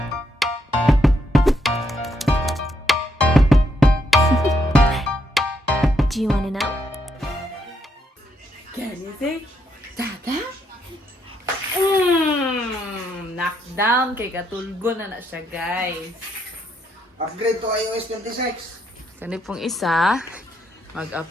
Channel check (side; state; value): both; normal; correlation 0.76